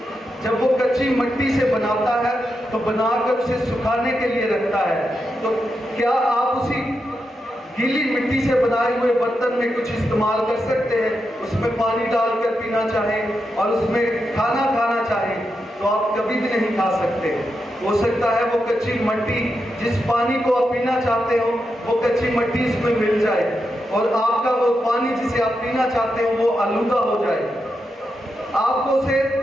جب وہ کچی مٹی سے بناتا ہے تو بنا کر اسے سکھانے کے لیے رکھتا ہے، تو کیا آپ اسی گیلی مٹی سے بنائے ہوئے برتن میں کچھ استعمال کر سکتے ہیں؟ اس میں پانی ڈال کر پینا چاہیں اور اس میں کھانا کھانا چاہیں تو آپ کبھی بھی نہیں کھا سکتے۔ ہو سکتا ہے وہ کچی مٹی جس پانی کو آپ پینا چاہتے ہو وہ کچی مٹی اس میں مل جائے اور آپ کا وہ پانی جسے آپ پینا چاہتے ہو وہ آلودہ ہو جائے۔ آپ کو اسے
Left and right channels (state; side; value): normal; both; correlation 0.86